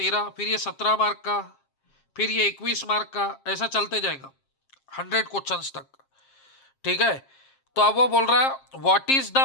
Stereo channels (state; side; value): late; right; 7.5 ms